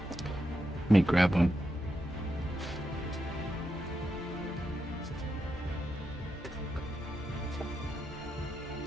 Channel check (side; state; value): both; normal; correlation 0.85